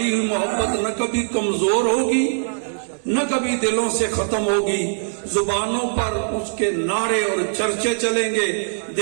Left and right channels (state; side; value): silent; left; digital silence